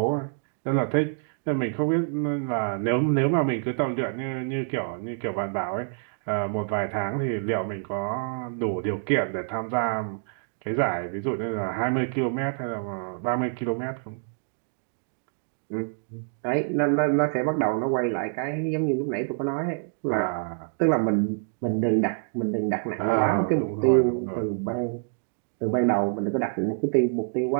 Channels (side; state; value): left; silent; digital silence